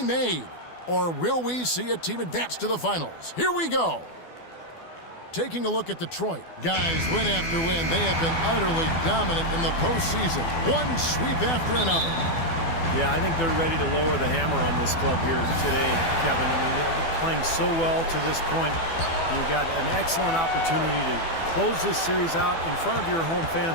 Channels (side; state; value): right; late; 12 ms